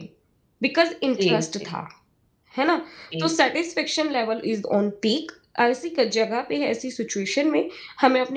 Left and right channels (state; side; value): identical; both; correlation 1.00